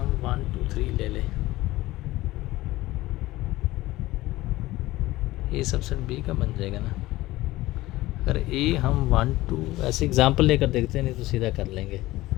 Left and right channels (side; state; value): right; quieter; 17.8 dB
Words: 1 2 3 ले लें। ए सबसेट बी का बन जाएगा ना। अगर ए हम 1 2 ऐसे एग्जांपल लेकर देखते हैं, नहीं तो सीधा कर लेंगे।